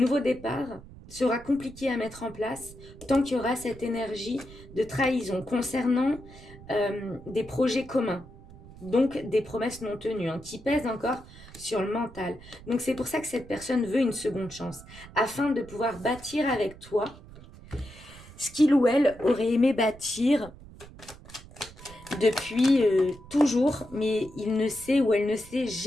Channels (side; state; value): right; noise; rumble, 19 dB below the sound